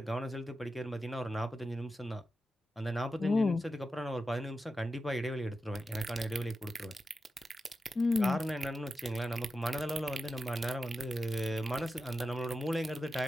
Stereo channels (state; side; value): normal; both; correlation 0.91